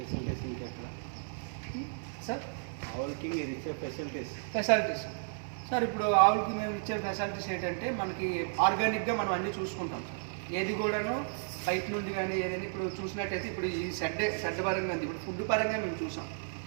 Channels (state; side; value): silent; left; digital silence